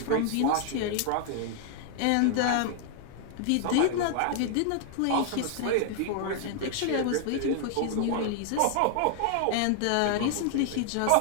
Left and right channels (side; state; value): both; different; correlation 0.00